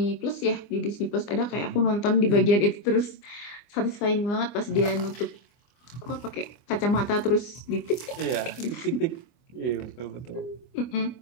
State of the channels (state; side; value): late; right; 24 ms